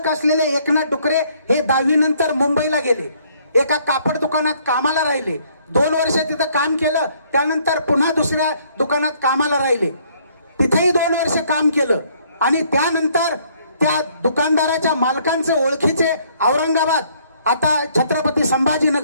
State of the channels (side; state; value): both; inverted; correlation -0.64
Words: असलेले एकनाथ डुकरे हे 10वी नंतर मुंबईला गेले. एका कापड दुकानात कामाला राहिले. 2 वर्ष तिथं काम केलं, त्यानंतर पुन्हा दुसऱ्या दुकानात कामाला राहिले. तिथेही 2 वर्ष काम केलं आणि त्यानंतर त्या दुकानदाराच्या मालकांचे ओळखीचे औरंगाबाद आता छत्रपती